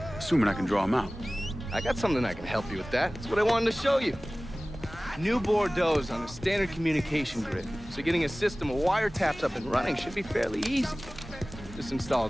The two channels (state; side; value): normal; both; correlation 0.98